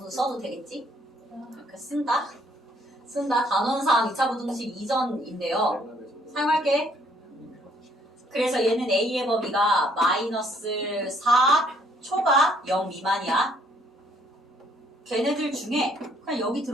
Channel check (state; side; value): normal; both; correlation 0.65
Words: 써도 되겠지? 이렇게 쓴다. 단원상 2차 부등식 이전인데요. 사용할게. 그래서 얘는 A의 범위가 마이너스 4 초가 0 미만이야. 걔네들 중에 그냥 여기